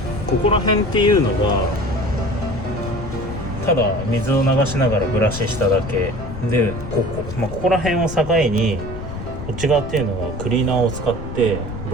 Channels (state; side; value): noise; left; rumble, 9 dB below the sound